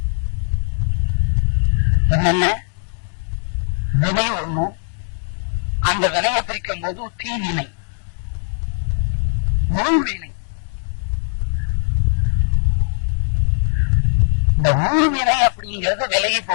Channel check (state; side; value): silent; right; digital silence